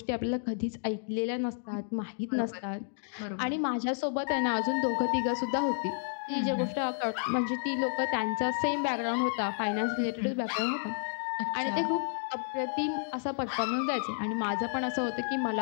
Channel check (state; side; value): silent; right; digital silence